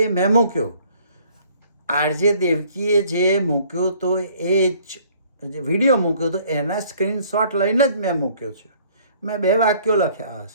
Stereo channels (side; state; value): both; inverted; correlation -0.58